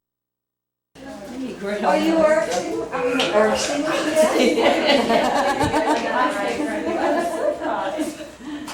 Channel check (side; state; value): both; identical; correlation 1.00